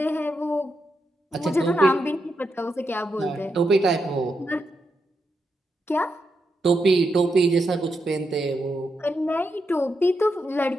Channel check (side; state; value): both; normal; correlation 0.84